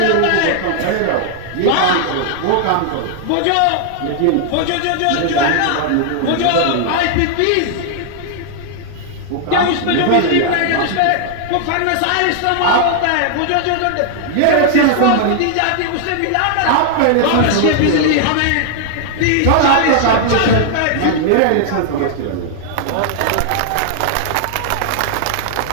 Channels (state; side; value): different; both; correlation 0.00